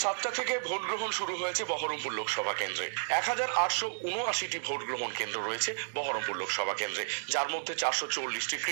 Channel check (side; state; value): left; silent; 56 dB below the other